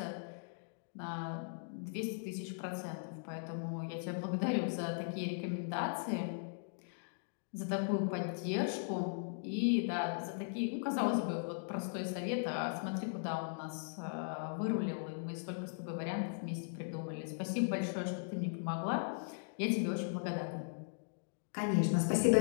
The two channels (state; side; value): silent; right; digital silence